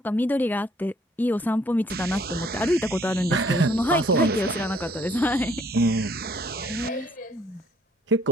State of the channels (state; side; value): normal; both; correlation 0.63